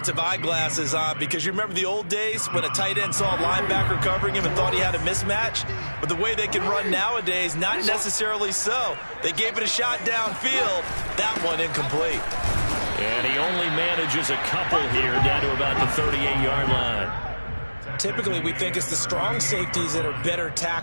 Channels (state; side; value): inverted; both; correlation -1.00